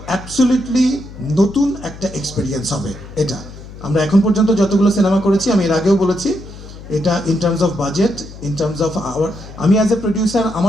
অ্যাবসলিউটলি নতুন একটা এক্সপিরিয়েন্স হবে এটা। আমরা এখন পর্যন্ত যতগুলো সিনেমা করেছি, আমি এর আগেও বলেছি, এটা in terms of budget, in terms of our, আমি অ্যাজ এ প্রডিউসার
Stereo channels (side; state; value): left; noise; hum, 15 dB below the sound